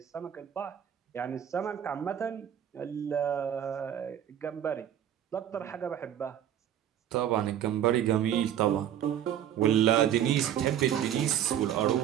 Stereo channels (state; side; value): quieter; left; 10.3 dB